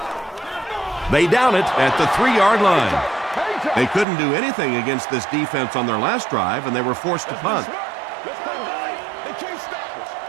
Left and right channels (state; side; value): drops out; left; at 4.0 s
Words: They down it at the 3-yard line. They couldn't do anything against this defense on their last drive, and they were forced to punt.